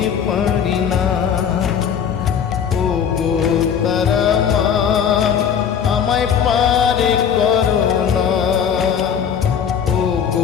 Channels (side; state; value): right; quieter; 7.9 dB